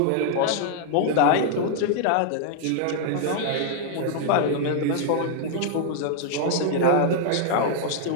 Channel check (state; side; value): different; both; correlation -0.01